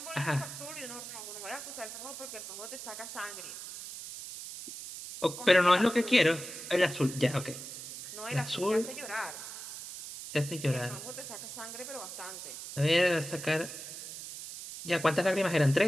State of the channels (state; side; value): noise; right; hiss, 10 dB below the sound